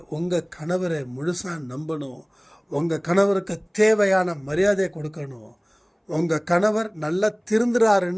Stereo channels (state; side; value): identical; both; correlation 1.00